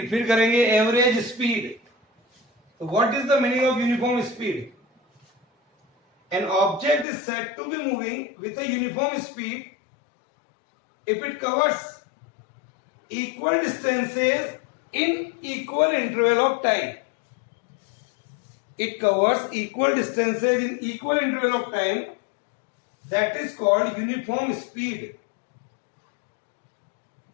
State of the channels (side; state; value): right; drops out; at 7.1 s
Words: फिर करेंगे average speed. So what is the meaning of uniform speed? An object is said to be moving with a uniform speed if it covers equal distances in equal interval of time. It covers equal distances in equal interval of time. That is called uniform speed.